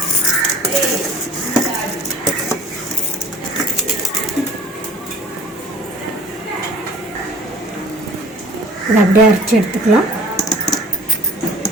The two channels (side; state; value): both; normal; correlation 0.47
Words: இதை அப்படியே அரைச்சி எடுத்துக்கலாம்.